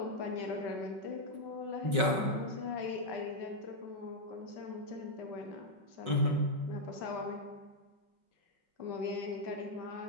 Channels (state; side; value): late; left; 5.4 ms